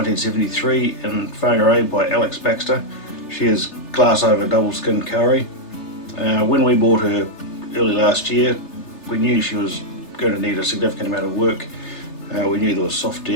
in Whangarei by Alex Baxter. She is glass over double skin Kari. When we bought her early last year, we knew she was going to need a significant amount of work. We knew there was soft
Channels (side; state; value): right; late; 3.3 ms